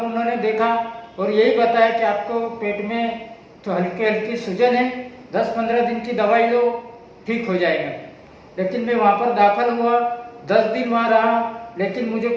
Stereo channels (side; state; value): both; identical; correlation 1.00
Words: उन्होंने देखा और यही बताया कि आपको पेट में तो हल्की हल्की सूजन है, 10-15 दिन की दवाई लो, ठीक हो जाएगा। लेकिन मैं वहाँ पर दाखिल हुआ, 10 दिन वहाँ रहा, लेकिन मुझे